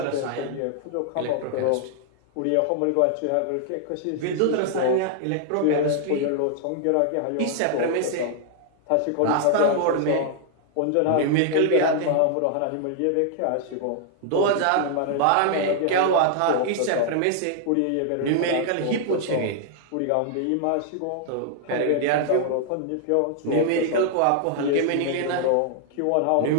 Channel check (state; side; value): different; both; correlation -0.01